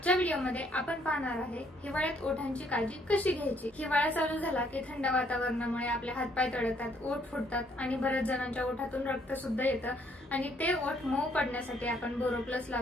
व्हिडिओमध्ये आपण पाहणार आहे हिवाळ्यात ओठांची काळजी कशी घ्यायची। हिवाळा चालू झाला की थंड वातावरणामुळे आपले हातपाय तळतात, ओठ फुटतात आणि बऱ्याच जणांच्या ओठातून रक्त सुद्धा येतं आणि ते ओठ मऊ पडण्यासाठी आपण बोरोप्लस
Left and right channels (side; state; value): both; normal; correlation 0.67